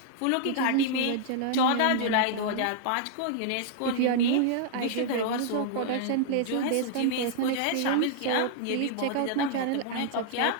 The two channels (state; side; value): different; both; correlation -0.01